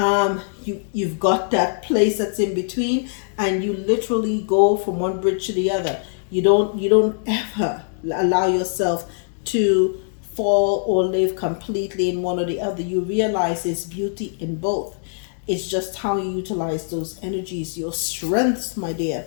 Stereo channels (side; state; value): right; silent; digital silence